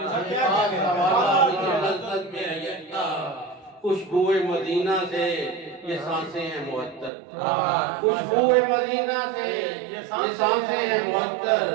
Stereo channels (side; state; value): left; drops out; at 7.1 s